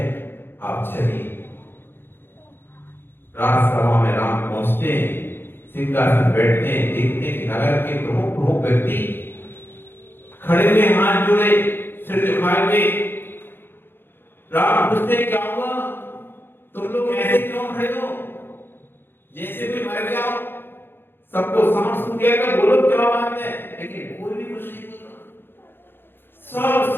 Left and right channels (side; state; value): right; late; 0.10 ms